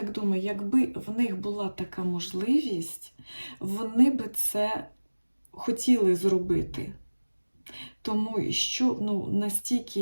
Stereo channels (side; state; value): both; inverted; correlation -1.00